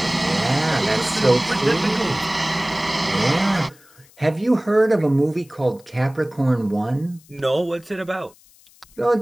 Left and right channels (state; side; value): noise; left; hiss, 28 dB below the sound